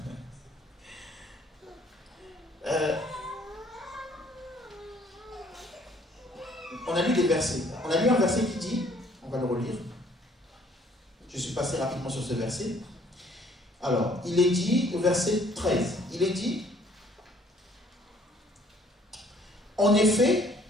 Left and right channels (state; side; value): normal; both; correlation 0.60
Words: on a lu des versets. On a lu un verset qui dit, on va le relire. Je suis passé rapidement sur ce verset. Alors, il est dit, au verset 13, il est dit... En effet,